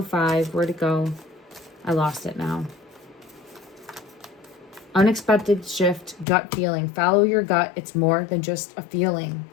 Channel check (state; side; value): drops out; right; at 6.2 s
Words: Where'd it go? I lost it now. Unexpected shift, gut feeling. Follow your gut. It's more than just a feeling.